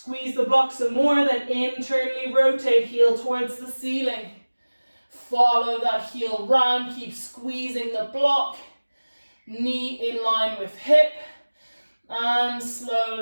the block some more, then internally rotate, heel towards the ceiling. Follow that heel round. Keep squeezing the block. Knee in line with hip, and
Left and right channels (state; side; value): inverted; both; correlation -1.00